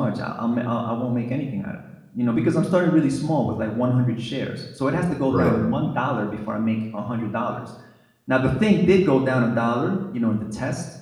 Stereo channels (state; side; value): identical; both; correlation 1.00